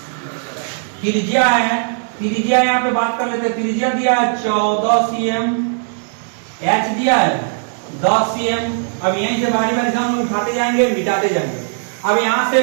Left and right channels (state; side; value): silent; left; digital silence